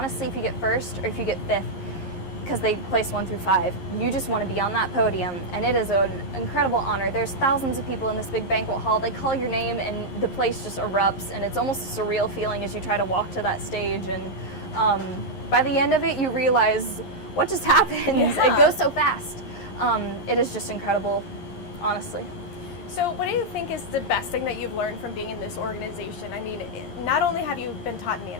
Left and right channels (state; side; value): late; right; 11 ms